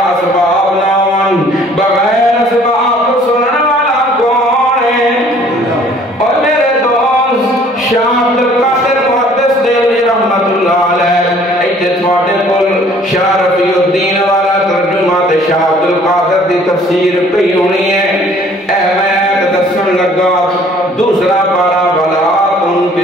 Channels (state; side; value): normal; both; correlation 0.56